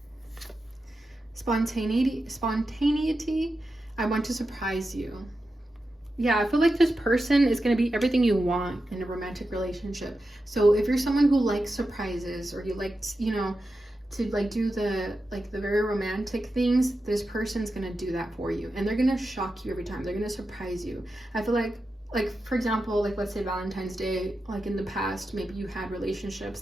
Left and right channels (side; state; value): both; normal; correlation 0.90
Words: Spontaneity, I want to surprise you. Yeah, I feel like this person is going to be everything you want in a romantic relationship. So if you're someone who likes surprises, or you like, to like do the very romantic things, this person's going to do that for you, and they're going to shock you every time. They're going to surprise you. I feel like for example, like let's say Valentine's Day, like in the past, maybe you had relationships